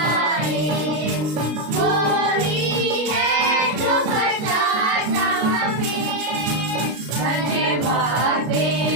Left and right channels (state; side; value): late; left; 33 ms